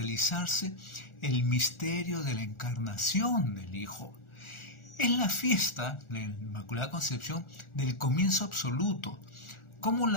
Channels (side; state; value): right; late; 1.4 ms